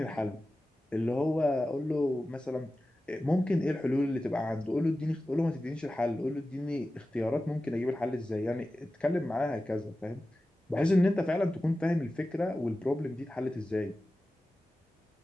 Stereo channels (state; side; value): normal; both; correlation 0.94